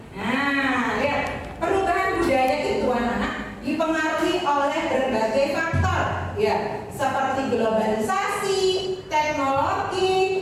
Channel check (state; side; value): identical; both; correlation 1.00